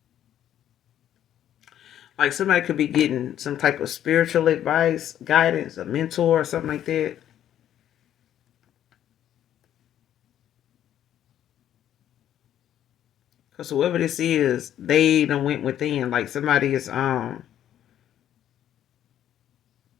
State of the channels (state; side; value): quieter; right; 11.0 dB